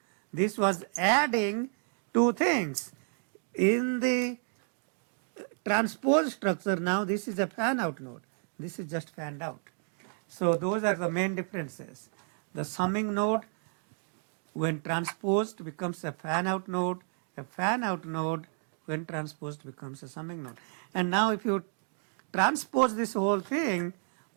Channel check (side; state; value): left; silent; 57 dB below the other